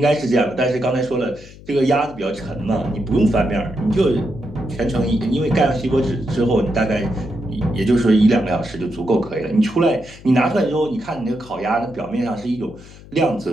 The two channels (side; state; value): left; noise; hum, 19 dB below the sound